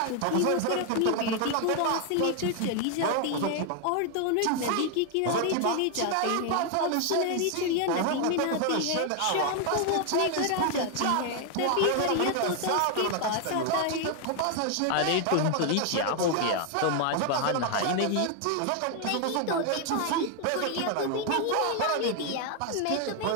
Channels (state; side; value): different; both; correlation 0.00